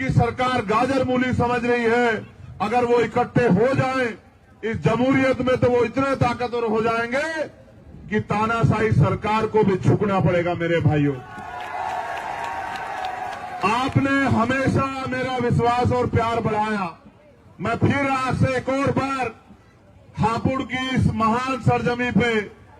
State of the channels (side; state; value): both; identical; correlation 1.00